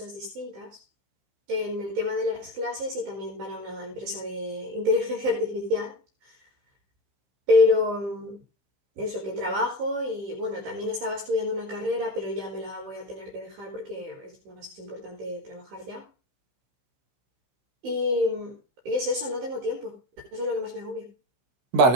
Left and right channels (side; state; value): left; late; 15 ms